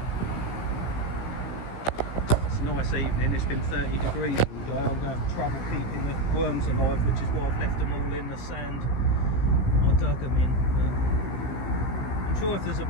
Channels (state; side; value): late; right; 16 ms